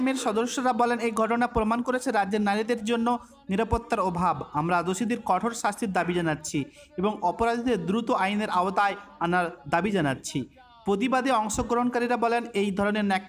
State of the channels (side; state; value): both; identical; correlation 1.00